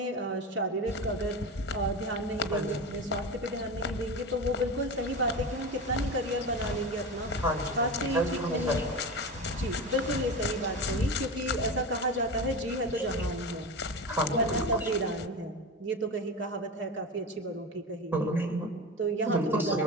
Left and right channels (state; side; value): normal; both; correlation 0.25